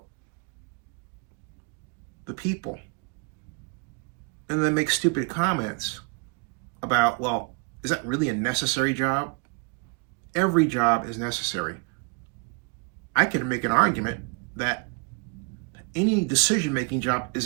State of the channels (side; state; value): left; quieter; 32.8 dB